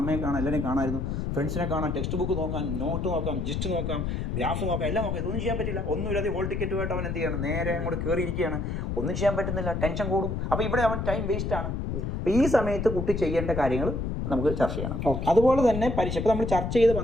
അമ്മയെ കാണാം, എല്ലാവരെയും കാണാമായിരുന്നു, ഫ്രണ്ട്സിനെ കാണാം, ടെക്സ്റ്റ് ബുക്ക് നോക്കാം, നോട്ട് നോക്കാം, ജിസ്റ്റ് നോക്കാം, ഗ്രാഫ് നോക്കാം, എല്ലാം നോക്കാം. ഇതൊന്നും ചെയ്യാൻ പറ്റില്ല. ഒന്നുമില്ലാതെ ഹോൾ ടിക്കറ്റുമായിട്ട് അവൻ എന്ത് ചെയ്യണം, നേരെ അങ്ങോട്ട് കയറിയിരിക്കുകയാണ്. ഒന്നും ചെയ്യാൻ പറ്റുന്നില്ല, ടെൻഷൻ കൂടും. അപ്പോൾ ഇവിടെ അവൻ ടൈം വേസ്റ്റ് ആണ്. അപ്പോൾ ഈ സമയത്ത് കുട്ടി ചെയ്യേണ്ട കാര്യങ്ങൾ നമുക്ക് ചർച്ച ചെയ്യണം. അതുപോലെ തന്നെ പരീക്ഷ ഇപ്പോൾ നമ്മൾ ചർച്ച ചെയ്ത്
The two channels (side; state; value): left; noise; rumble, 2 dB below the sound